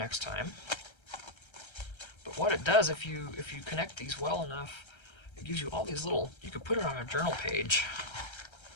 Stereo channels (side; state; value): right; late; 1.3 ms